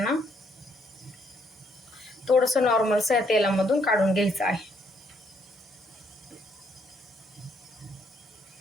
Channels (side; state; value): both; normal; correlation 0.71